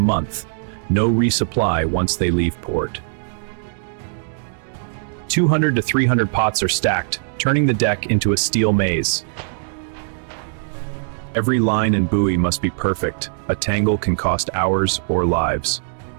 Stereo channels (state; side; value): silent; left; digital silence